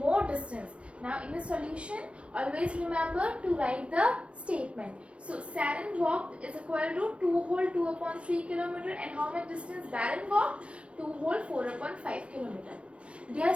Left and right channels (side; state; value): left; late; 0.060 ms